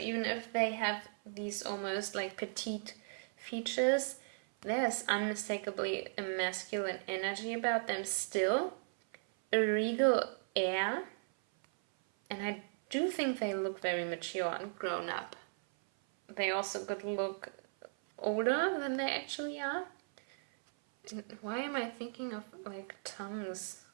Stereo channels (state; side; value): silent; left; 53 dB below the other